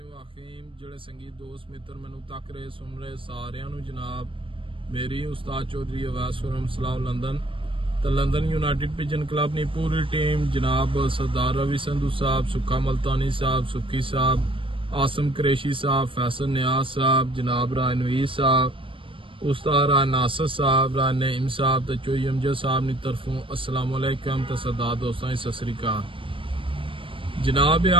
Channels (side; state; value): left; late; 0.25 ms